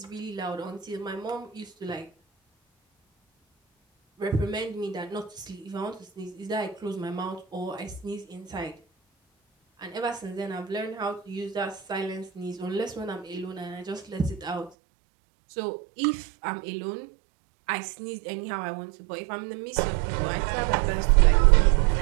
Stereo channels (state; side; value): drops out; left; at 14.7 s